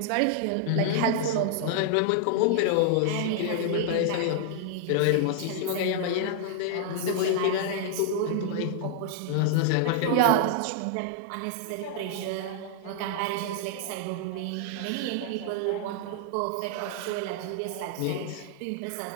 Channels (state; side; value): different; both; correlation -0.01